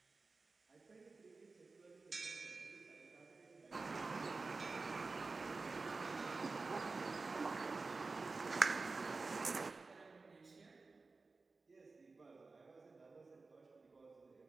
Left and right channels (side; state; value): left; quieter; 3.9 dB